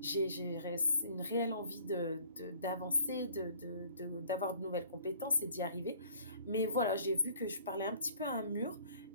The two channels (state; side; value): inverted; both; correlation -0.55